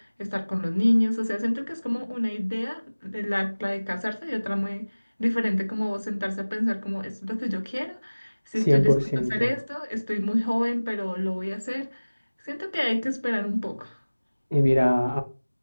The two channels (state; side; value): inverted; both; correlation -1.00